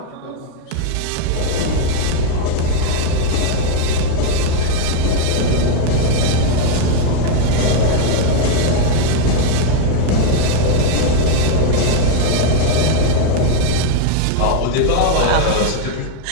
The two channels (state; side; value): different; both; correlation 0.00